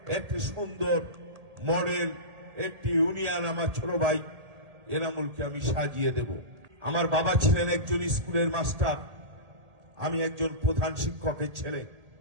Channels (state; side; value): late; left; 1.8 ms